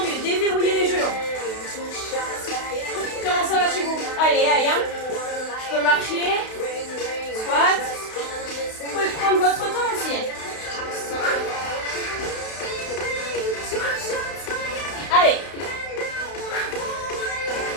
Déverrouillez les genoux. Comment ça va chez vous? Allez, allez, hein. Je peux marcher. Squat. Vous pouvez prendre votre temps aussi. Allez.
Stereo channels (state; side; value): late; right; 32 ms